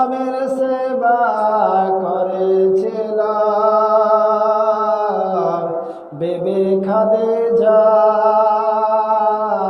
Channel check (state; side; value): identical; both; correlation 1.00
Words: সেবা করেছিল বেবি খাদিজা,